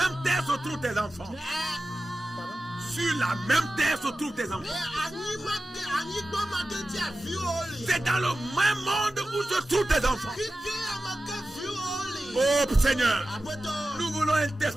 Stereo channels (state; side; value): normal; both; correlation 0.94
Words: terre se trouvent tes enfants. Sur la même terre se trouvent tes enfants. C'est dans le même monde où se trouvent tes enfants. Oh Seigneur, nous voulons